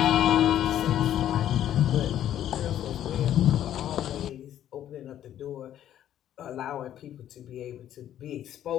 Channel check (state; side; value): quieter; right; 11.3 dB